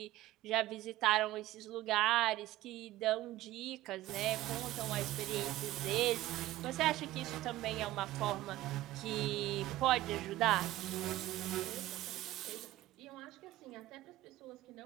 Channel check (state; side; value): quieter; left; 16.0 dB